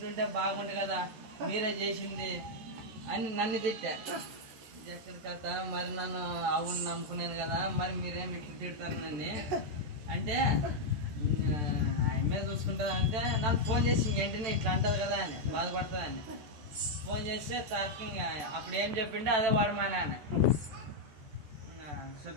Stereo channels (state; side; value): late; left; 14 ms